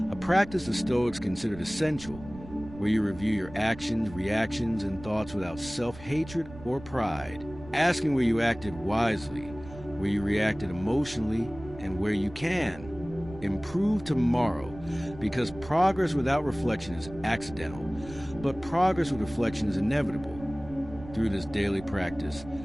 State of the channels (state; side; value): noise; right; rumble, 16 dB below the sound